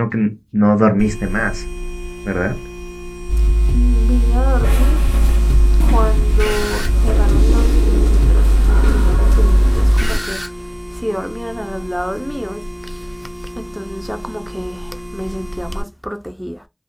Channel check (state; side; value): identical; both; correlation 1.00